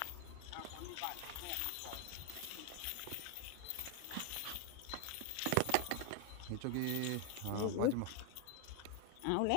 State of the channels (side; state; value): both; different; correlation 0.01